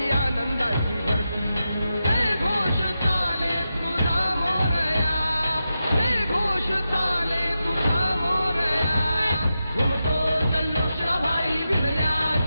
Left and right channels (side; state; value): both; inverted; correlation -0.89